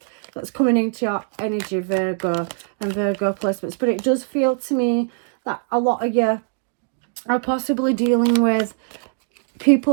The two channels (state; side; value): silent; left; 64 dB below the other